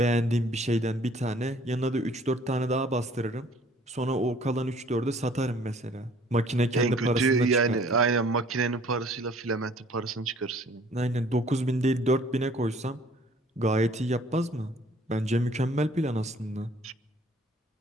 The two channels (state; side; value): normal; both; correlation 0.55